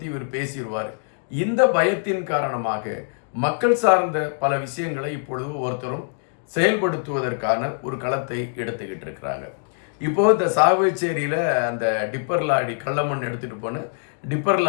இவர் பேசிடுவார். இந்த பயத்தின் காரணமாக மக்கள் சார்ந்த பல விஷயங்களை இப்பொழுது ஒருத்தரும் செயல்படுத்துவதற்கான ஒரு களத்தை எடுத்துக்கிட்டு இருக்கிறாங்க. இப்போது இந்த சாவகச்சேரியில் அந்த டிப்பர் லாரி கள்ளமண் எடுத்துகிட்டு போன டிப்பர்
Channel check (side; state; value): right; silent; digital silence